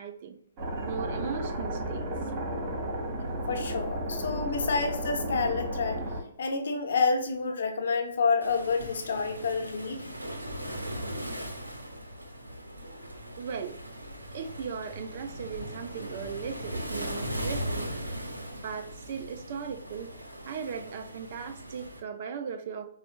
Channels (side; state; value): both; inverted; correlation -0.66